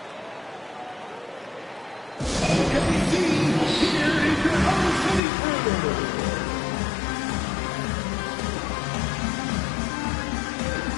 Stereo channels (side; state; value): right; drops out; at 5.2 s